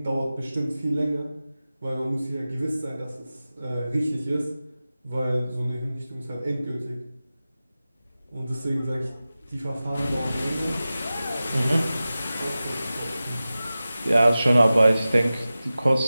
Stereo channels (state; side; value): inverted; both; correlation -0.95